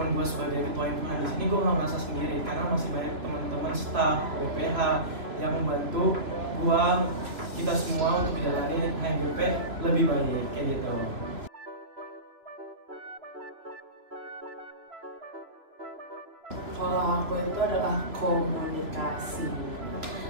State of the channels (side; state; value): left; late; 2.7 ms